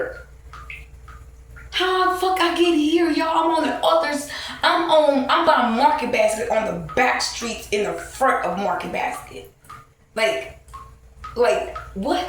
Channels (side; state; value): both; identical; correlation 1.00